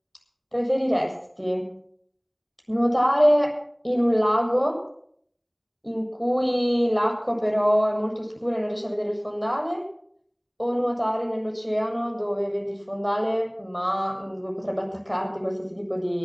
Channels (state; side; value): identical; both; correlation 1.00